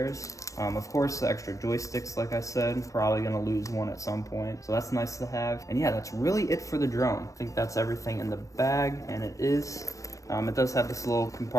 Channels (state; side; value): late; right; 0.16 ms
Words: Of course, the extra joysticks, like I said, probably gonna lose one at some point, so that's nice to have. And yeah, that's really it for the drone. I think that's everything in the bag, and it is. It does have this little